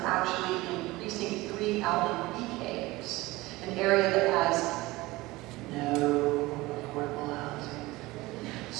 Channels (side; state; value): left; quieter; 19.9 dB